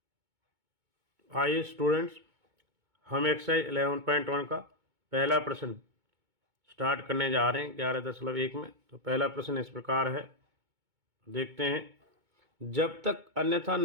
आइए स्टूडेंट्स, हम एक्सरसाइज 11.1 का पहला प्रश्न स्टार्ट करने जा रहे हैं 11.1 में। तो पहला प्रश्न इस प्रकार है, देखते हैं। जब तक अन्यथा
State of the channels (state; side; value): late; left; 2.2 ms